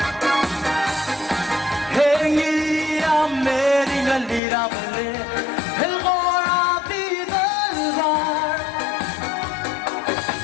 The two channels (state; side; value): drops out; right; at 4.4 s